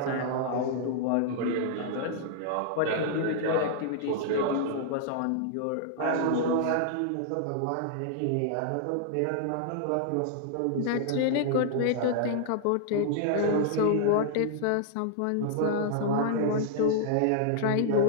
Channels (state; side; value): different; both; correlation -0.01